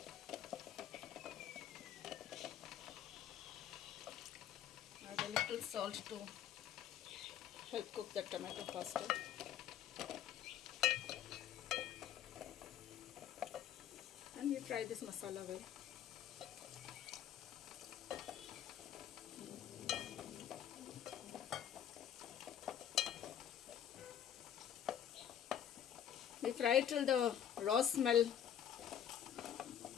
Add a little salt to help cook the tomato faster. And we fry this masala well. We fry till the raw smell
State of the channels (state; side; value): quieter; right; 9.7 dB